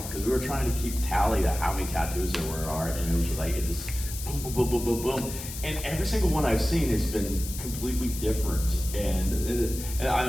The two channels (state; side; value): noise; left; hiss, 10 dB below the sound